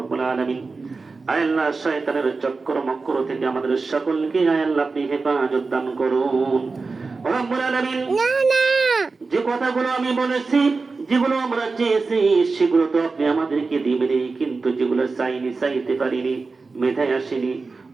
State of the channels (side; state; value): left; quieter; 4.1 dB